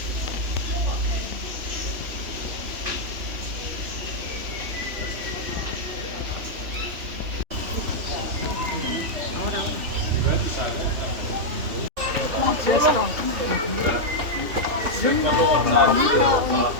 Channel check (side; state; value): left; late; 3.0 ms